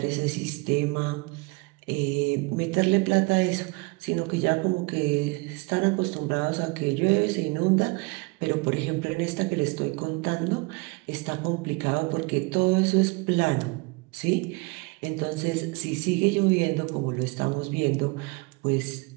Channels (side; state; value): left; quieter; 26.7 dB